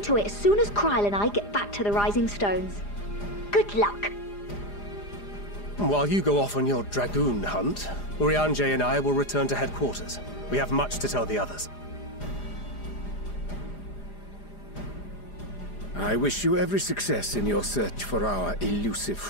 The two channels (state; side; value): late; right; 4.9 ms